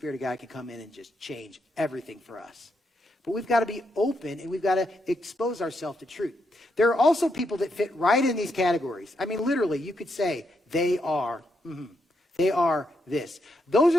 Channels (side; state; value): both; normal; correlation 0.80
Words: of God can come in and just change everything for us. But we've got to be open, and we've got to expose ourselves to truth. There are also people that fit right in these categories. I mean, literally, you could say, they are this. Those